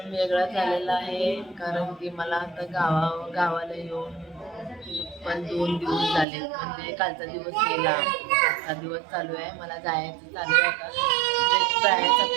वेगळा झालेला आहे कारण की मला आता गावाला येऊन पण 2 दिवस झाले. म्हणजे कालचा दिवस गेला, आजचा दिवस चालू आहे. मला जायचं चालू आहे आता, म्हणजे जायचं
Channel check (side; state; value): left; drops out; at 6.2 s